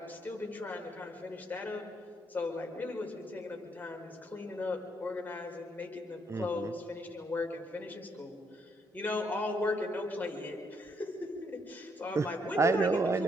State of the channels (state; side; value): normal; both; correlation 0.73